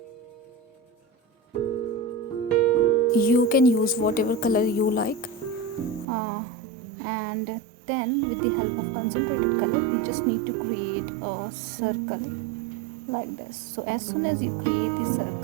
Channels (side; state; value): left; drops out; at 6.1 s